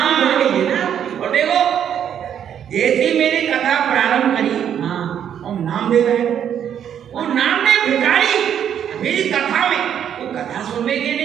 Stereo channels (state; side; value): quieter; left; 9.1 dB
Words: और देखो जैसी मेरी कथा प्रारंभ करी और नामदेव है वो नामदेव भिखारी मेरी कथा में वो कथा सुनने के